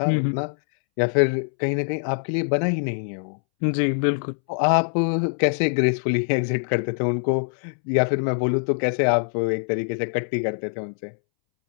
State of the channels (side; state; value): right; silent; 63 dB below the other